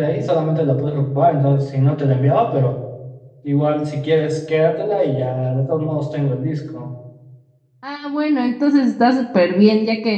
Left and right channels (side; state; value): both; identical; correlation 1.00